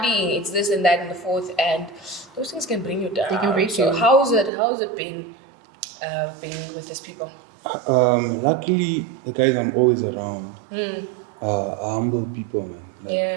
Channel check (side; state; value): left; drops out; at 4.5 s